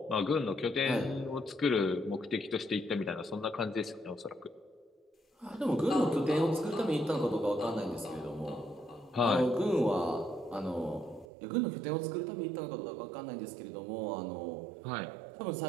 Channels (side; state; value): left; drops out; at 11.2 s